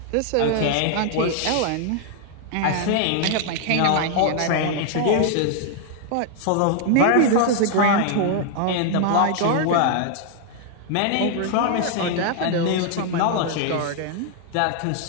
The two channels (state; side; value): different; both; correlation 0.00